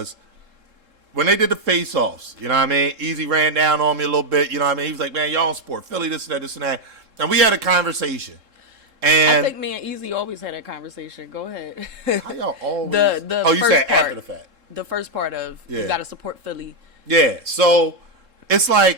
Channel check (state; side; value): late; left; 3.7 ms